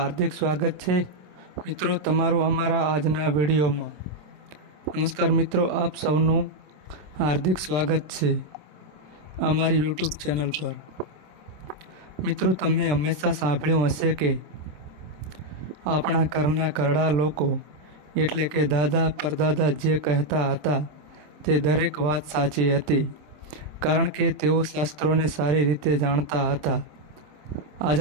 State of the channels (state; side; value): late; left; 27 ms